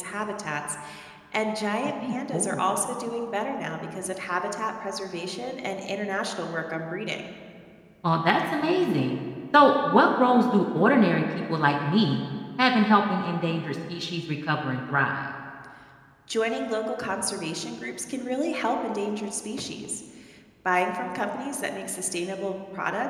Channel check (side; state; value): both; identical; correlation 1.00